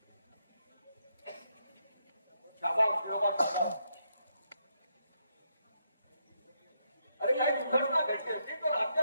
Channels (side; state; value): both; inverted; correlation -0.78